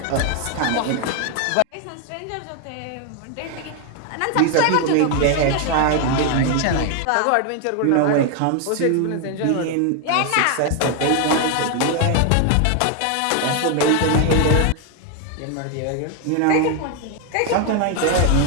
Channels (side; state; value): both; different; correlation 0.00